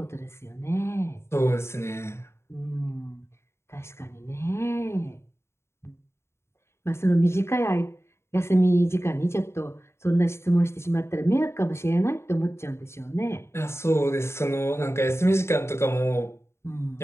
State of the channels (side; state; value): right; late; 0.13 ms